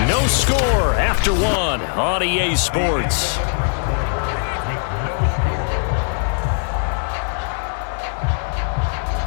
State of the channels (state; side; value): silent; right; 60 dB below the other